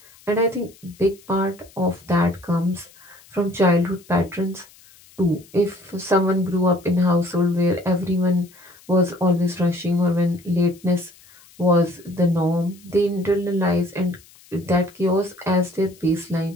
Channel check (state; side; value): noise; left; hiss, 26 dB below the sound